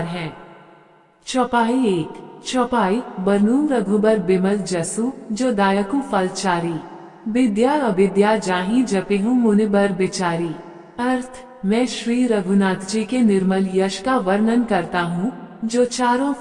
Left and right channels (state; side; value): identical; both; correlation 1.00